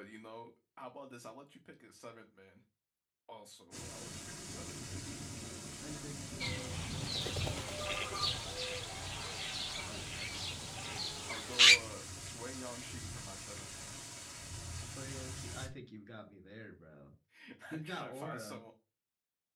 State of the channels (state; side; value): identical; both; correlation 1.00